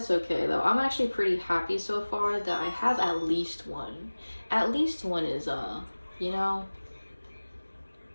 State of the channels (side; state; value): both; inverted; correlation -1.00